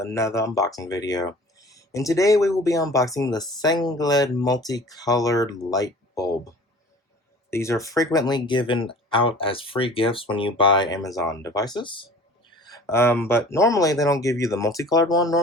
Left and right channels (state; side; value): normal; both; correlation 0.45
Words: unboxing video. And today we will be unboxing the Sengled Multicolored light bulb. These are frequently given out as free gifts when you buy Amazon devices. But normally they don't give you the multicolored one.